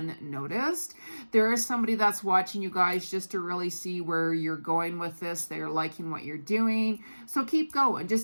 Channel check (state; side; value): inverted; both; correlation -1.00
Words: There is somebody that's watching you guys just to really see where you're going with this. They're liking what you're doing. So keep going.